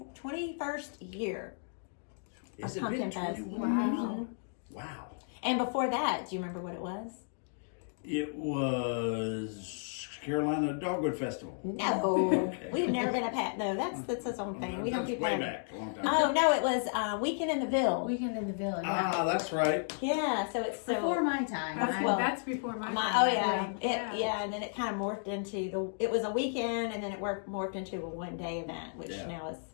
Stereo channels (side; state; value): right; silent; digital silence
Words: year Is of it been Pumpkin Fest. 21? Wow. And before that, do you remember what it was? It was Carolina Dogwood Festival. No. Okay. We've never been a pat. No, that's its own thing. We don't That's do way that. back, a long time Oh, ago. no, it was Weekend in the Ville. Weekend in the Village. Ah, that's right. Yeah, so it's so. Before my time. Well, That's before my Oh time. yeah, and then it kind of morphed into it was a weekend, and then it morphed into a 1-day event, which Yeah. now is.